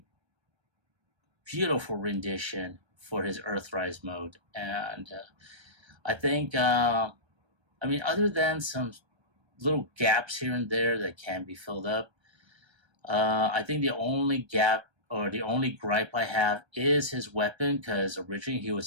beautiful rendition for his Earthrise mode. And I think, other than some little gaps here and there that can be filled up, I think the only gap or the only gripe I have is his weapon, because originally he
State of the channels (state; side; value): late; left; 1.3 ms